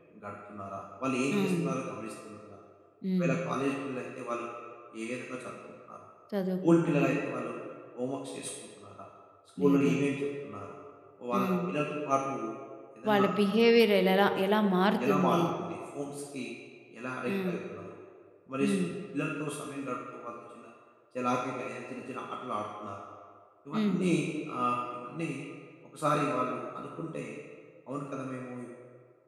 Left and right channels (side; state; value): both; identical; correlation 1.00